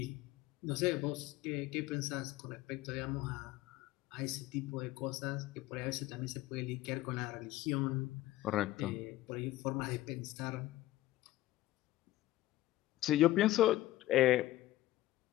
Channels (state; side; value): quieter; right; 15.9 dB